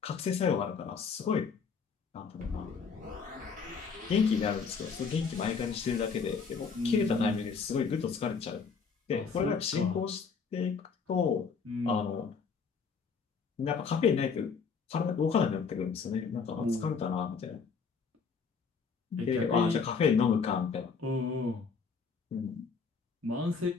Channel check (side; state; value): right; quieter; 5.5 dB